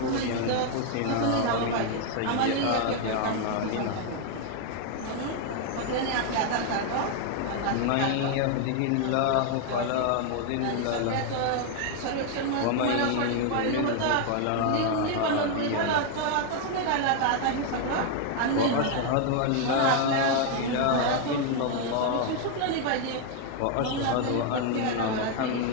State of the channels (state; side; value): different; both; correlation 0.00